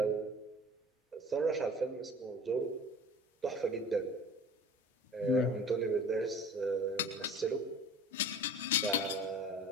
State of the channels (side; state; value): both; normal; correlation 0.43